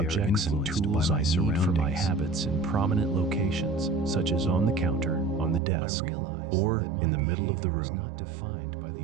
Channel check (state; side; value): drops out; left; at 5.6 s